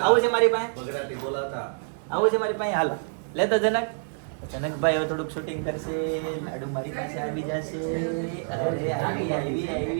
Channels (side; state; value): left; silent; digital silence